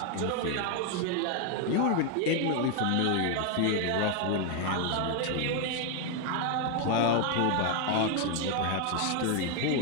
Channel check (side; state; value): both; different; correlation 0.01